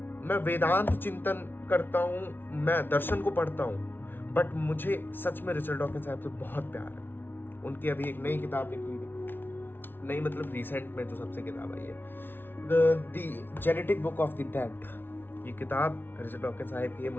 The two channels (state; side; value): late; right; 0.10 ms